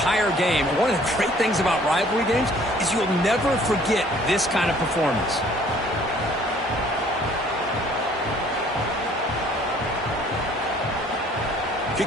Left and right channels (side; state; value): both; normal; correlation 0.57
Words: game. And one of the great things about rivalry games is you'll never forget this kind of performance.